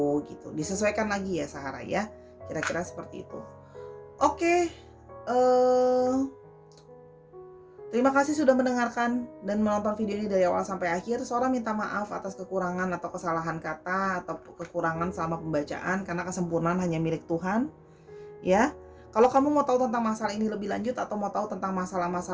gitu. Disesuaikan lagi ya Sahara ya. Kira-kira seperti itu. Oke. Terima kasih sudah mendengarkan dan menonton video ini dari awal sampai akhir. Sora minta maaf atas kekurangan atau kesalahan kata atau kekurangan selama pembacaan karena kesempurnaan hanya milik Tuhan. Ya. Kalau kamu mau tahu tentang masalah ini lebih lanjut atau mau tahu tentang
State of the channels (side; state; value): both; identical; correlation 1.00